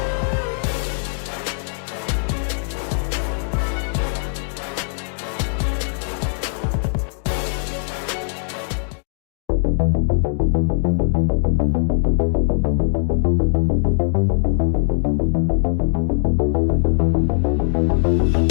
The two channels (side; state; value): right; silent; digital silence